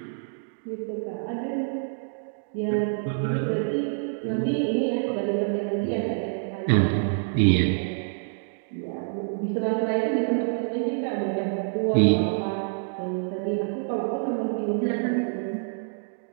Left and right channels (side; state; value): left; silent; digital silence